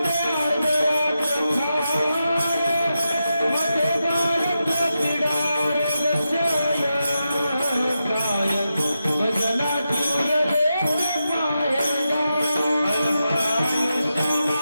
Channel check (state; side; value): inverted; both; correlation -0.88